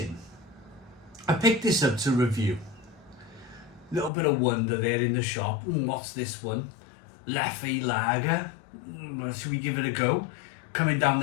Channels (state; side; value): drops out; right; at 4.1 s